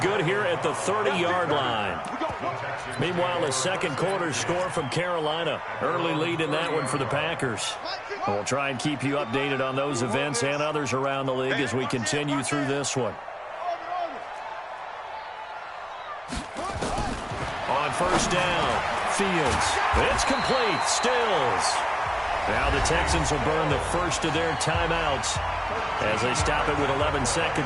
here at the 30-yard line. Meanwhile, a second quarter score from Carolina. Early lead in that one for the Packers. And we'll try and keep you updated on those events and others around the league as we continue through this one. On first down, Fields. It's complete. Stills. Now the Texans will burn the first of their timeouts as they stop it with 11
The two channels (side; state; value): both; identical; correlation 1.00